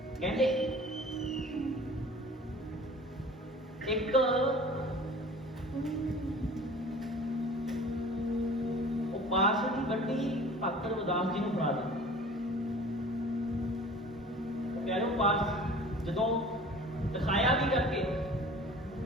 ਕਹਿੰਦੇ ਇੱਕ ਉਹ ਪਾਸ ਦੀ ਗੱਡੀ ਭਗਤ ਰਵਿਦਾਸ ਜੀ ਨੂੰ ਫੜਾ ਦਿੱਤੀ। ਪਿਆਰਿਓ ਪਾਸ ਜਦੋਂ ਦਿਖਾਇਆ ਵੀ ਕਰਕੇ,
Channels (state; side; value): normal; both; correlation 0.44